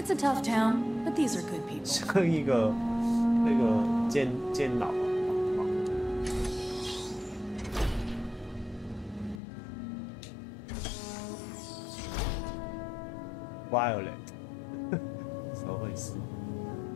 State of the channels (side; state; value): right; drops out; at 9.4 s